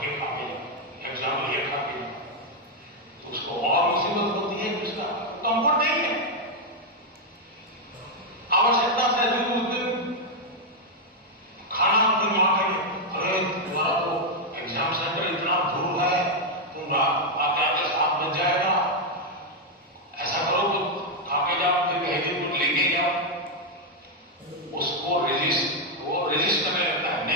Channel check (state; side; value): normal; both; correlation 0.01